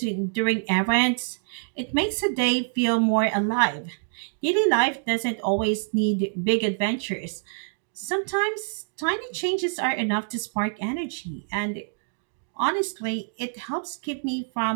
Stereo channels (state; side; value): silent; left; digital silence